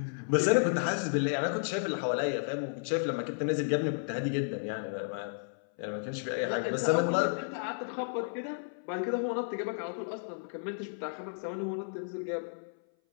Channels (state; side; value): silent; right; 56 dB below the other